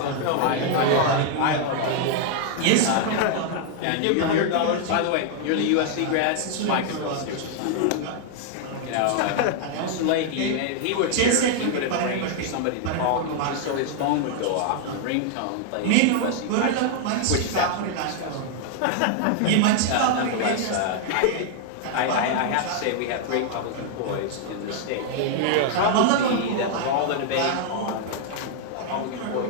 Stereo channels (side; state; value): both; different; correlation 0.00